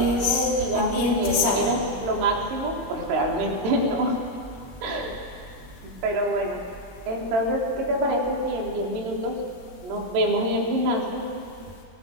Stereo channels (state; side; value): late; left; 21 ms